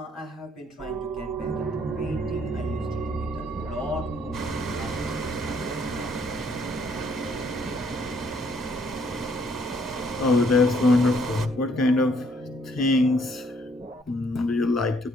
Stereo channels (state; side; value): normal; both; correlation 0.66